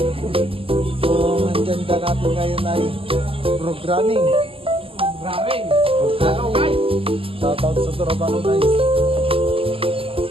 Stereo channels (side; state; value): left; late; 0.26 ms